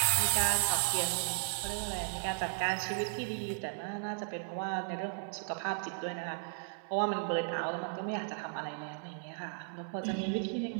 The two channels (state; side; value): silent; left; digital silence